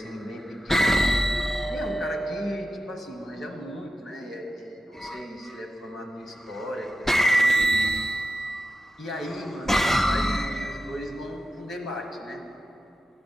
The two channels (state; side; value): normal; both; correlation 0.91